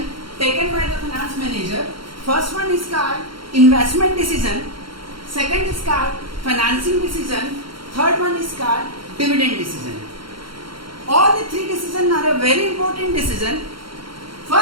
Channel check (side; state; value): left; late; 0.73 ms